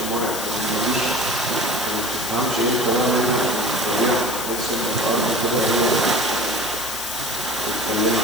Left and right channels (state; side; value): noise; left; hiss, 6 dB below the sound